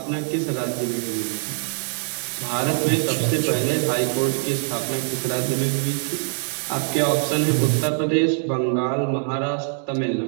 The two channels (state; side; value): silent; left; digital silence